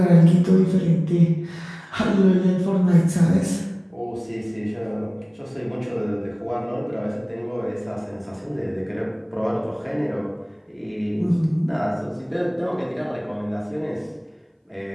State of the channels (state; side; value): identical; both; correlation 1.00